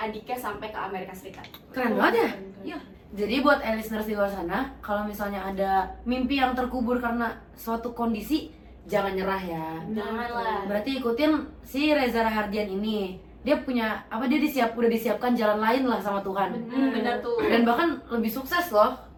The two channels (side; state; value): both; identical; correlation 1.00